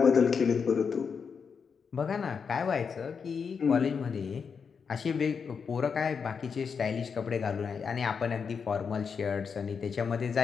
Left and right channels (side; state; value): right; quieter; 6.1 dB